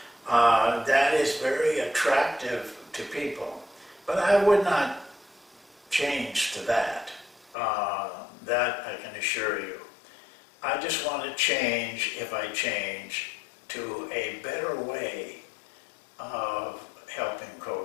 that is very attractive to people. But I would not change to that. That I can assure you. I just want to change, if I change, to a better way of helping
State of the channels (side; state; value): right; drops out; at 7.6 s